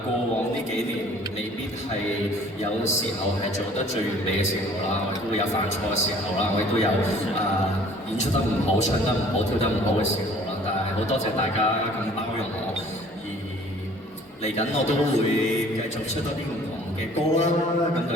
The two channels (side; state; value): both; normal; correlation 0.52